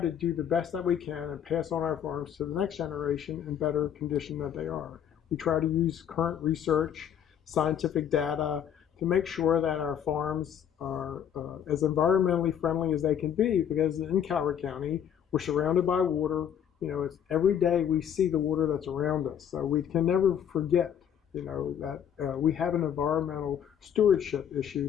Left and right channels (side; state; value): right; quieter; 9.1 dB